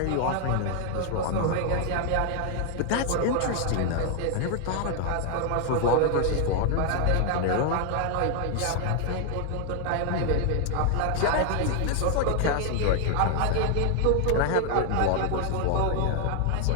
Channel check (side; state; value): both; different; correlation 0.00